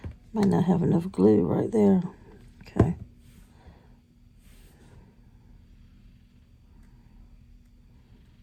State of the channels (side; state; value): both; identical; correlation 1.00